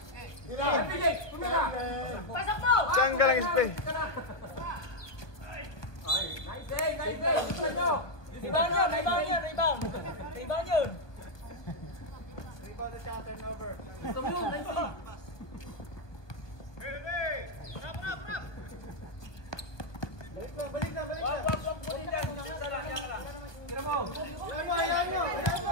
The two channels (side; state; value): right; late; 1.6 ms